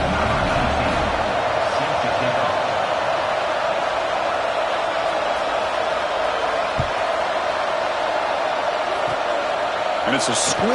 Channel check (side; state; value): both; identical; correlation 1.00